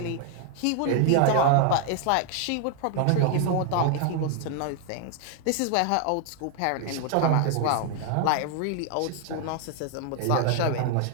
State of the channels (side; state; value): both; different; correlation 0.00